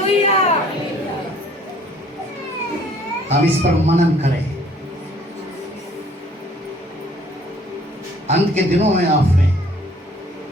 हम इस पर मनन करें। अंत के दिनों में आपने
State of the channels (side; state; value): both; normal; correlation 0.58